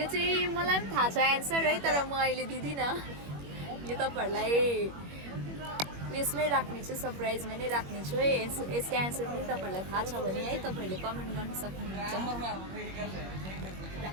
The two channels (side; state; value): left; late; 21 ms